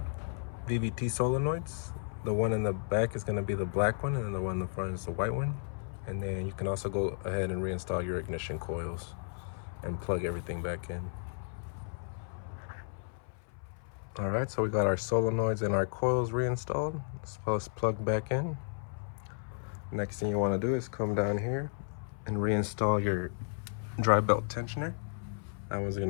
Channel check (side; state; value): right; silent; 55 dB below the other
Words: VVT solenoids. The one in the back is going to be the black one, and then the one in the front is the white one. And then you can also go ahead and reinstall your ignition coils and plug everything back in. All right, so we got our solenoids and our coils reinstalled, as well as plugged back in. Next thing you want to do is come down here and reinstall your dry belt tensioner. That one's